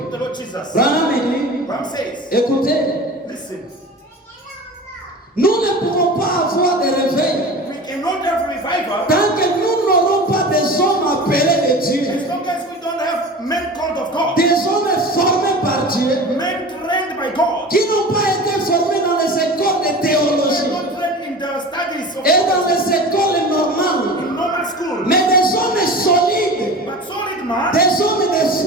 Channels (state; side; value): normal; both; correlation 0.34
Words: the Lord Jesus. Branham dit, Ram says, écoutez, listen, nous ne pouvons pas avoir de réveil we cannot have revival tant que nous n'aurons pas des hommes appelés de Dieu, as long as we don't have men called of God, des hommes formés par Dieu, men trained by God, qui n'ont pas été formés dans les écoles de they are théologie not trained in the studies of et dans les écoles normales, in normal school, mais des hommes solides, but solid man, des hommes de